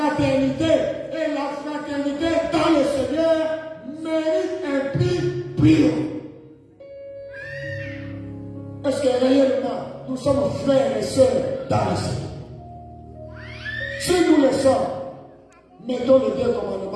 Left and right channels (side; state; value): both; identical; correlation 1.00